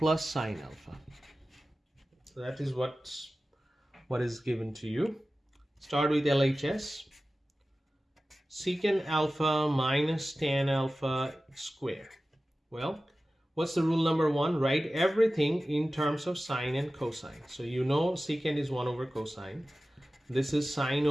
sine alpha. So that is what is given to you. Start with LHS. Secant alpha minus tan alpha square. Well, what's the rule number 1? Write everything in terms of sine and cosine. So you know secant is 1 over cosine. This is sine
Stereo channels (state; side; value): normal; both; correlation 0.95